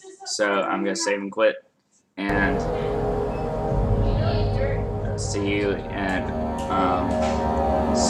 So I'm gonna save and quit, and see you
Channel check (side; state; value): both; identical; correlation 1.00